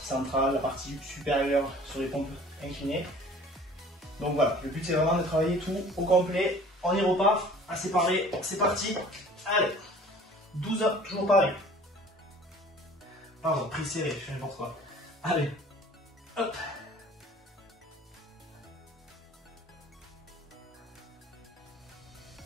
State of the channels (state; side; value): normal; both; correlation 0.48